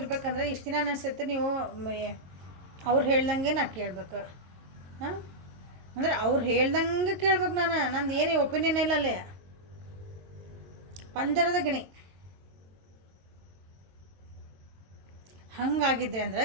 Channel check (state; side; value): late; left; 22 ms